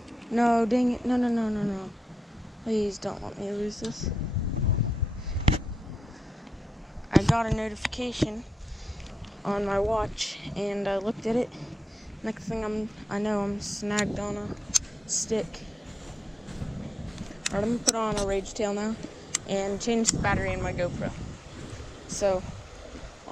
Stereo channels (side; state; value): both; normal; correlation 0.87